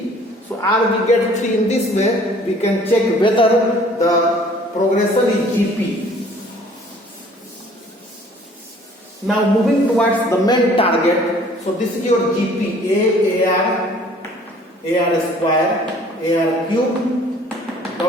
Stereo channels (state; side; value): normal; both; correlation 0.54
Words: So R we get 3 in this way. We can check whether the progression is GP. Now moving towards the main target. So this is your GP. AR square, AR cube,